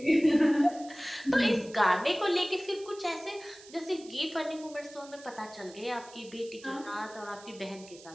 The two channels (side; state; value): right; noise; hiss, 20 dB below the sound